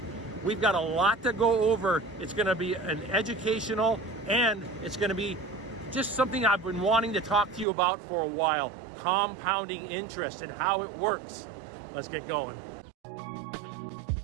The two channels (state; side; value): drops out; left; at 7.7 s